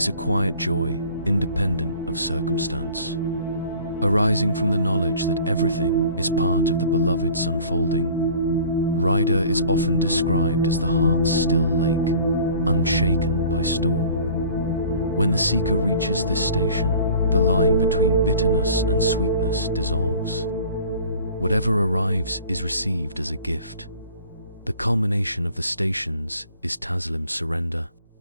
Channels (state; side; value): inverted; both; correlation -0.47